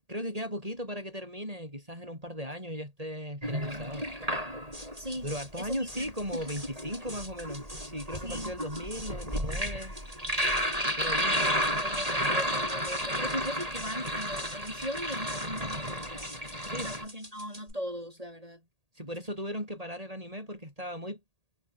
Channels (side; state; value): left; late; 1.8 ms